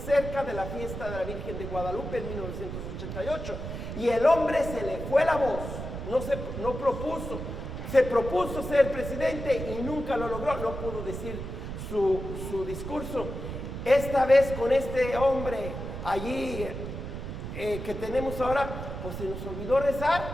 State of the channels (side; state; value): right; noise; rumble, 7 dB below the sound